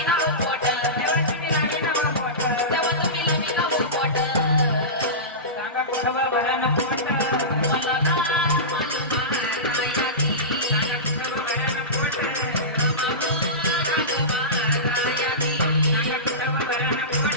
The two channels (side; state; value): both; normal; correlation -0.20